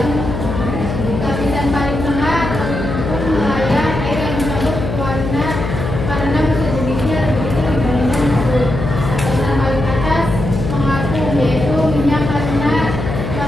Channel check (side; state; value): left; noise; hum, 4 dB below the sound